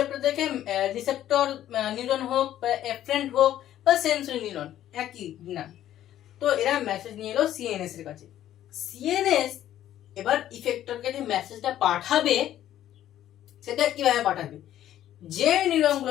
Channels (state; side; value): quieter; right; 12.2 dB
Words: থেকে রিসেপ্টর নিউরন হোক বা এফারেন্ট হোক বা সেন্সরি নিউরন একই না, তো এরা মেসেজ নিয়ে এলো সিএনএস এর কাছে। সিএনএস এবার ইফেক্টরকে যে মেসেজটা পাঠাবে সেটা কিভাবে পাঠাবে, যে নিউরন